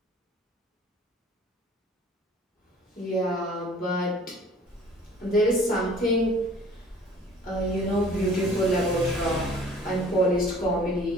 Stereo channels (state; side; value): normal; both; correlation 0.50